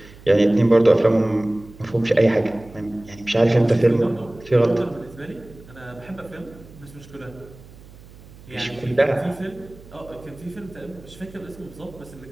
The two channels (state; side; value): noise; right; hum, 21 dB below the sound